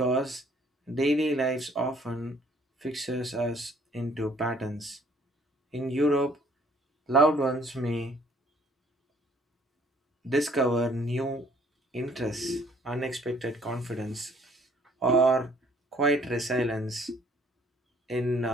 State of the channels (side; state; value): both; normal; correlation 0.60